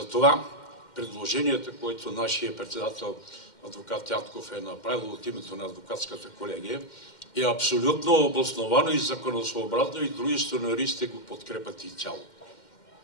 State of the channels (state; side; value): late; right; 2.1 ms